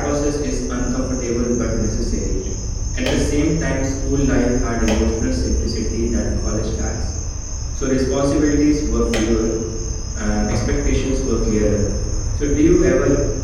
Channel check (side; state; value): both; identical; correlation 1.00